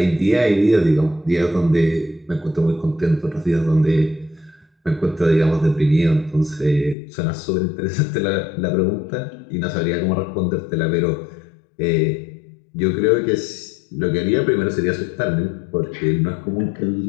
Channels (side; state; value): right; drops out; at 7.0 s